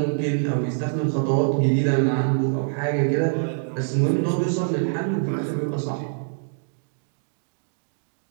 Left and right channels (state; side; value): silent; left; digital silence